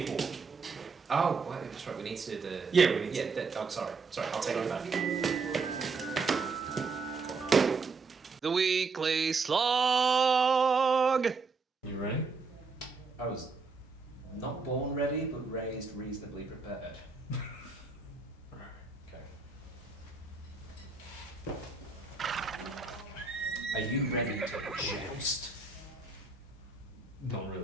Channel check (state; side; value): quieter; left; 4.4 dB